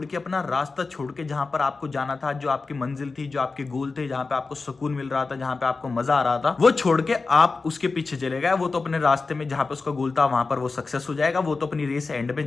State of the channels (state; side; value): quieter; right; 4.1 dB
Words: के, अपना रास्ता छोड़ के, जहां पर आपको जाना था, जो आपकी मंजिल थी, जो आपके गोल थे, जहां पे आपको सुकून मिल रहा था, जहां पे आपको मजा आ रहा था, वो छोड़ के आप उसके पीछे चले गए। वो तो अपने रास्ते में जहां पे उसका गोल था वहां पर वो सक्सेस हो जाएगा, वो तो अपनी रेस एंड में